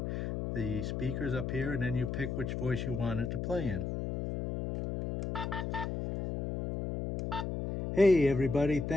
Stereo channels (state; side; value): noise; left; hum, 3 dB below the sound